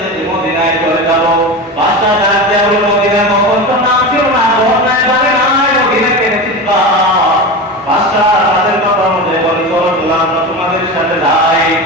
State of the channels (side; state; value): both; normal; correlation 0.25